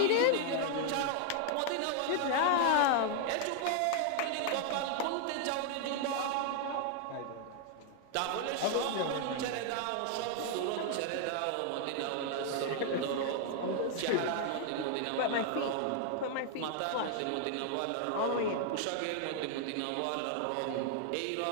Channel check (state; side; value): different; both; correlation 0.00